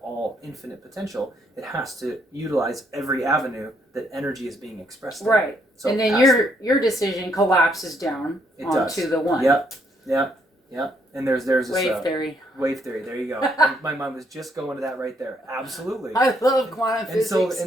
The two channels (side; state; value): both; normal; correlation 0.71